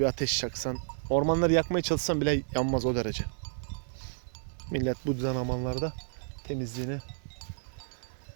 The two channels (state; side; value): silent; left; 57 dB below the other